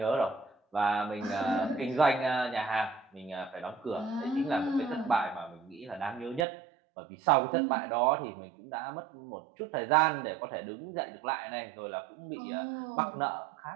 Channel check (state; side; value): drops out; left; at 6.5 s